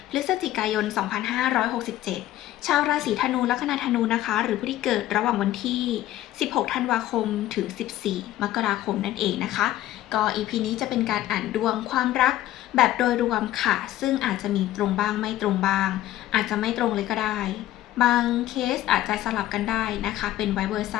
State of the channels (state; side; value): quieter; right; 14.1 dB